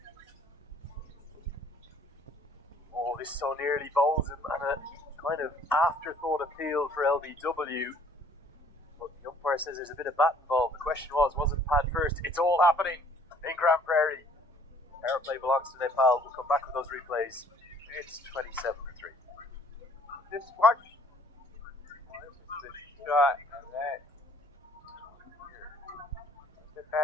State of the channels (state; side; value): normal; both; correlation 0.58